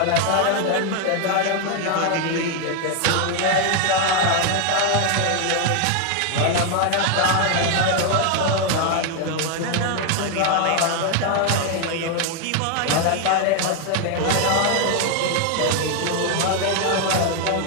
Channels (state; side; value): different; both; correlation 0.01